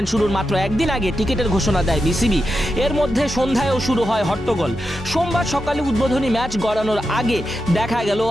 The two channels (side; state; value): both; normal; correlation 0.88